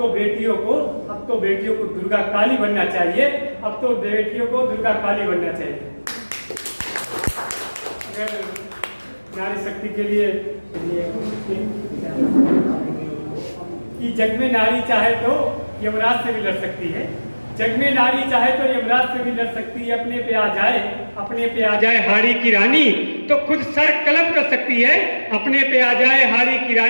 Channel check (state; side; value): inverted; both; correlation -1.00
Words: बेटियों को दुर्गा काली बनना चाहिए, अब तो बेटियों को दुर्गा काली बनना चाहिए। अगर नारी शक्ति के लिए कि जग में नारी चाहे तो यमराज से भी लड़ सकती है, जग में नारी चाहे तो यमराज से भी लड़ सकती है। अपने पे आ जाए, अपने पे आ जाए हाड़ी की रानी तो खुद सर कलम कर सकती है। अपने पे आ जाए हाड़ी की